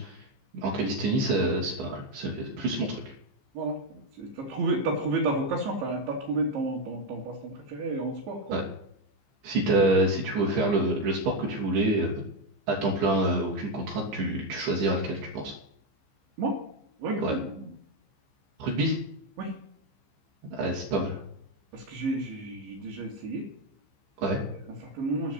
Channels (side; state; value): left; late; 15 ms